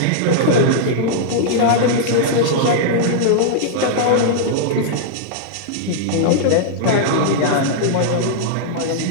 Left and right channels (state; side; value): different; both; correlation -0.02